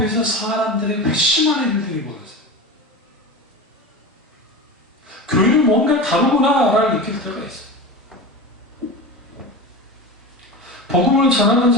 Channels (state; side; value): normal; both; correlation 0.27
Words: 사람들의 회심하는 일들이 벌어져요. 교회는 뭔가 다르구나라를 느낄 때가 있어요. 복음을 전하는